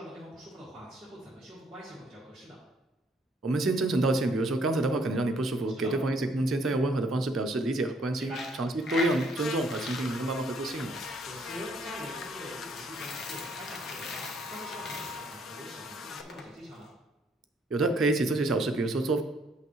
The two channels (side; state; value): both; normal; correlation 0.66